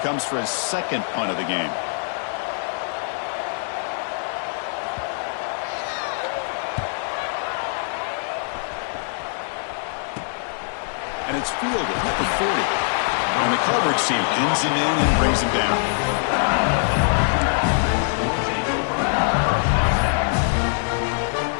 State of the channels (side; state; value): right; silent; digital silence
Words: for his second punt of the game. And it's fielded at the 40. And the coverage team pins him in and brings him down.